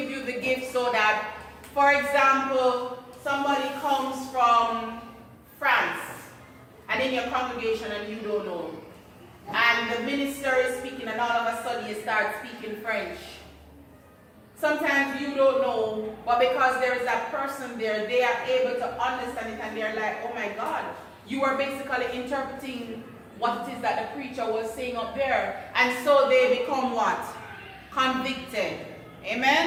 you the gift so that, for example, somebody comes from France and in your congregation and you don't know. And the minister is speaking and all of a sudden you start speaking French. Sometimes you don't know, but because there is that person there, they are able to understand it and they're like, oh my God, you are basically interpreting what it is that the preacher was saying up there. And so they become what? Convicted.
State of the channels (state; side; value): identical; both; correlation 1.00